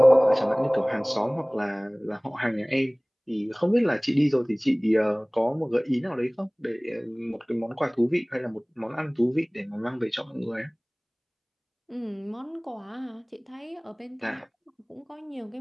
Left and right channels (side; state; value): both; identical; correlation 1.00